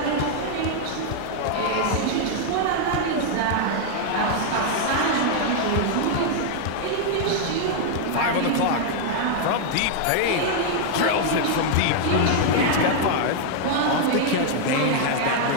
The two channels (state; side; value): different; both; correlation 0.00